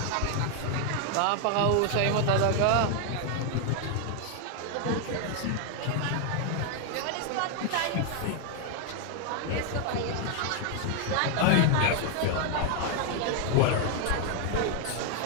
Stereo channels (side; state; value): both; different; correlation 0.00